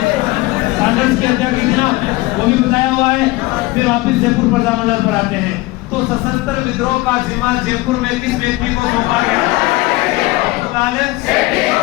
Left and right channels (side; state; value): right; quieter; 20.6 dB